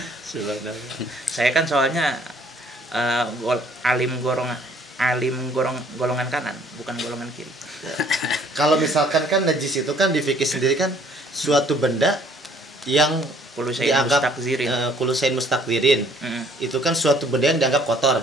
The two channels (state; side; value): normal; both; correlation 0.59